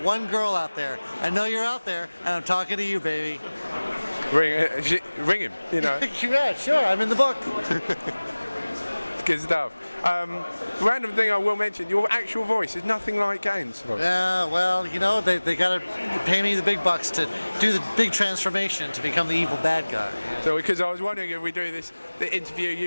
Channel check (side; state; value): both; inverted; correlation -1.00